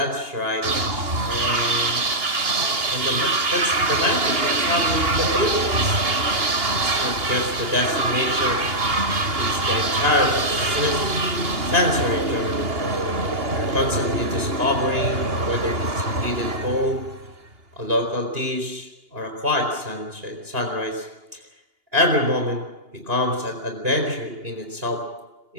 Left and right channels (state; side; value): late; left; 2.8 ms